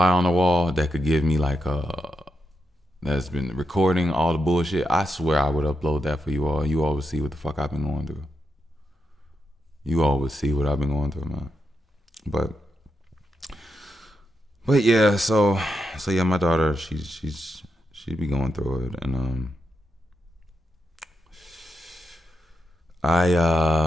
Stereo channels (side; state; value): both; normal; correlation 0.84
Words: on the wall that could give me like that's been recording all the bullshit, I swear I would upload that for you all. You all would see what the fuck I've been going through. You all would see what I've been going through, man. But yeah, so yeah, my daughter, she'd be going through it, and